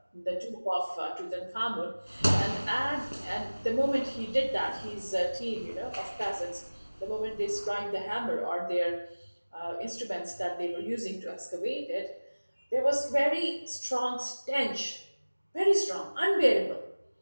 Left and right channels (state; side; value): inverted; both; correlation -1.00